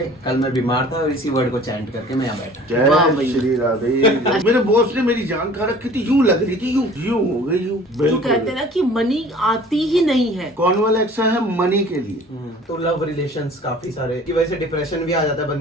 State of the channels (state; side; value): normal; both; correlation 0.48